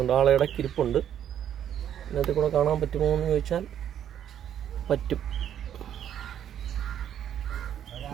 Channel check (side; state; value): left; quieter; 9.9 dB